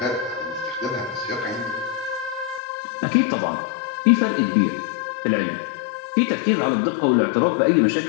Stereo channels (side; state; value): right; drops out; at 2.6 s